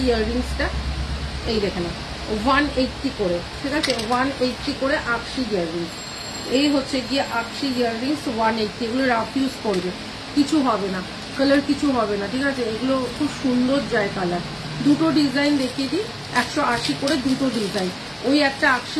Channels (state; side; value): identical; both; correlation 1.00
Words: ইয়াররিংসটা, এই দেখে না 180 করে। ঠিক আছে, 180 করে আকশি ইয়াররিংস। এই হচ্ছে গিয়ে আকশি ইয়াররিংস 180, এগুলো রাফ ইউজ করবে, কিছু হবে না, কালার কিছু হবে না। ঠিক আছে, এগুলো খুব সুন্দর যায় কালার। দুটো ডিজাইন দেখিয়ে দিই, 180 করে দুটো ডিজাইন, ওই একটা